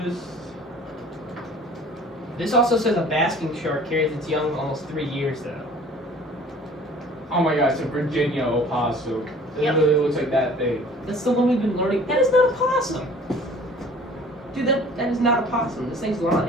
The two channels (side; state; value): both; normal; correlation 0.49